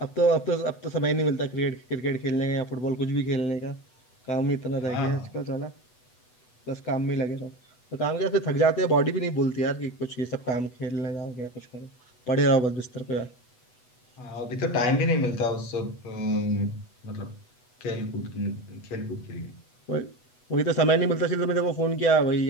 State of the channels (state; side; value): late; right; 8.1 ms